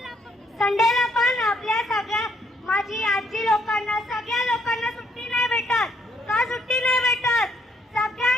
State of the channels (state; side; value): normal; both; correlation 0.71